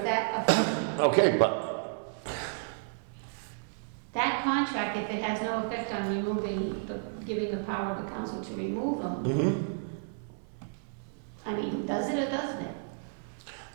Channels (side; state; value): left; quieter; 39.1 dB